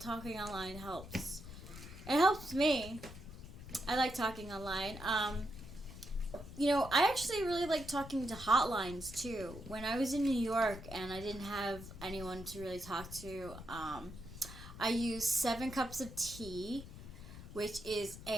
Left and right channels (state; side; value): noise; left; rumble, 13 dB below the sound